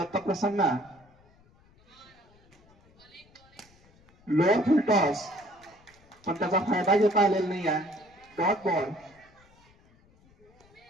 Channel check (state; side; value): noise; left; rumble, 30 dB below the sound